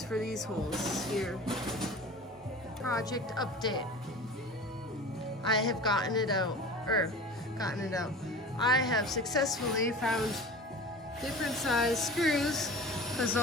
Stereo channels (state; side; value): normal; both; correlation 0.37